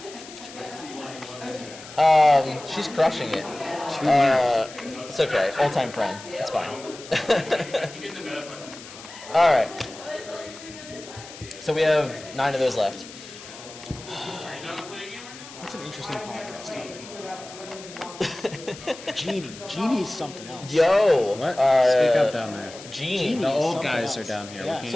She's crushing it. It's okay. Old-time friend. It's fine. All right. So we have 9 of those left. That's an interesting podcast topic. Genie. Genie is something else. Yo. What? Speak up down there. Genie. Genie The is old something guys else. are down here. We Yeah. can't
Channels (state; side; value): noise; left; hiss, 16 dB below the sound